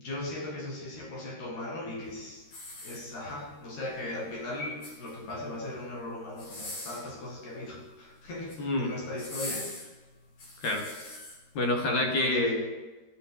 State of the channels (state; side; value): late; right; 13 ms